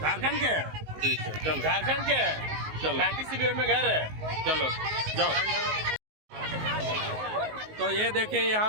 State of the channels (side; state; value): left; late; 19 ms